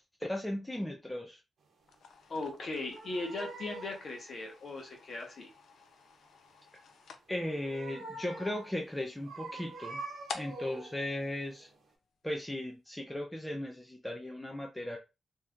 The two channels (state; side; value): normal; both; correlation 0.90